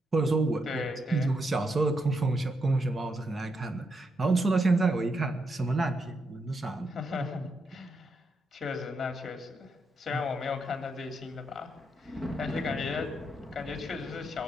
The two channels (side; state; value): both; normal; correlation 0.81